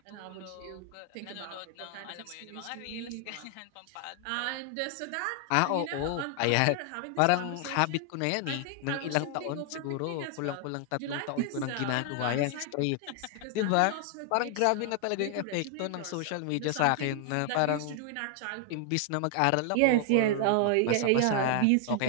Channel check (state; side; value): different; both; correlation 0.00